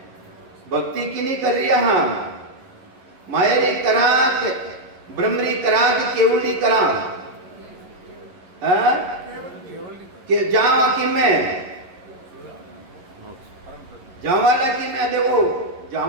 भक्ति की नहीं कर रही हाँ, मायरी कराक ब्रह्मरी कराक केवली कराक के जावा कि में जावाला की में देखो,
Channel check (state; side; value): late; left; 11 ms